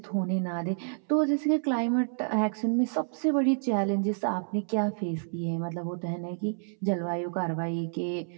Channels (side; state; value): left; silent; 58 dB below the other